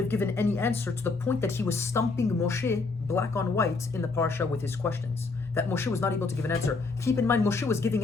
given any answer, to the point that he was stumping Moshe black on white in the parasha with his questions, that Moshe was not able to give an answer. Keep in mind, Moshe was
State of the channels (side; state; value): right; quieter; 4.0 dB